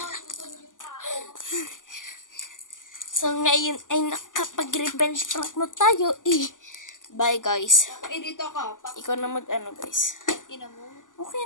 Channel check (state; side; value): late; right; 0.88 ms